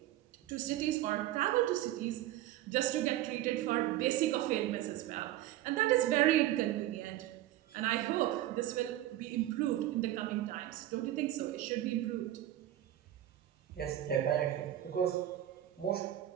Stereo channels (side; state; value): left; quieter; 13.7 dB